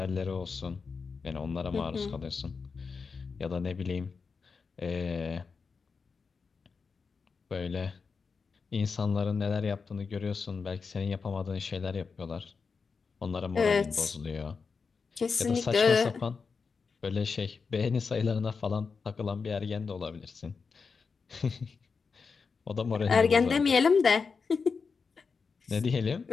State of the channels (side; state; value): right; quieter; 5.1 dB